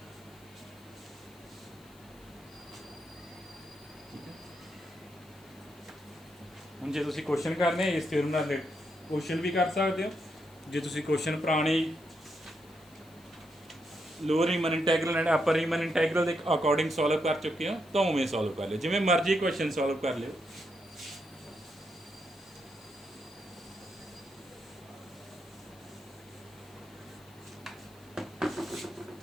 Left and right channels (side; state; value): left; noise; hiss, 27 dB below the sound